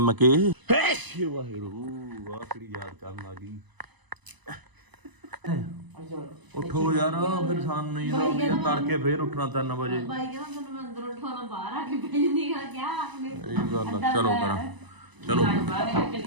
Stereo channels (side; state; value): left; late; 1.0 ms